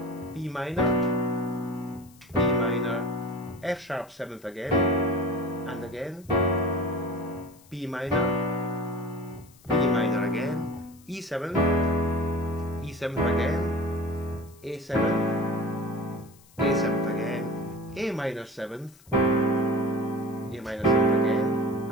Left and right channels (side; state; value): left; noise; hiss, 26 dB below the sound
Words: B minor, F sharp 7th again, and again B minor again, E7th, E7th again, A7th, A7th again, A minor 7th, A minor 7th again,